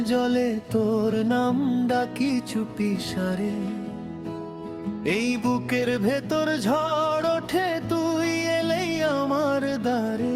জ্বলে, তোর নাম ডাকি চুপি সারে। এই বুকের ভেতর ঝড় ওঠে, তুই এলেই আমার দ্বারে।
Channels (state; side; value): identical; both; correlation 1.00